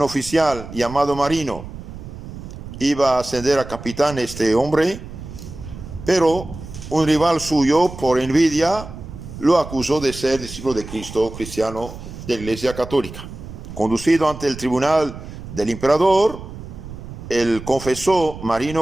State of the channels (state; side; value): noise; right; rumble, 12 dB below the sound